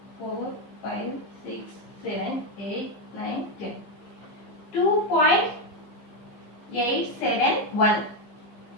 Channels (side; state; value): right; late; 15 ms